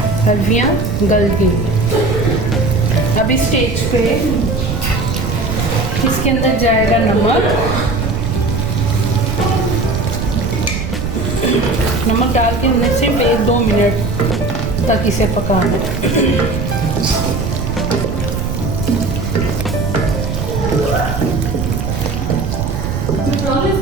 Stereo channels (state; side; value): noise; right; rumble, 3 dB below the sound